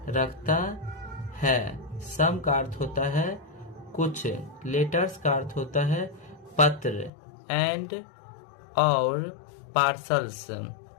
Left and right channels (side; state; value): right; drops out; at 7.1 s